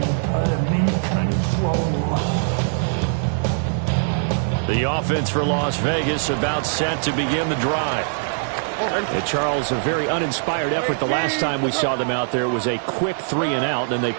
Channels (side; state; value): left; silent; digital silence